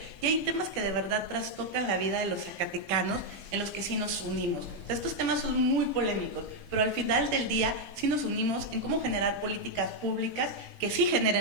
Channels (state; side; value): late; left; 17 ms